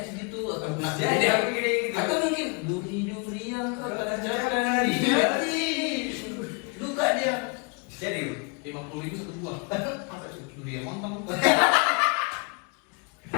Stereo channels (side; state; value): right; quieter; 32.9 dB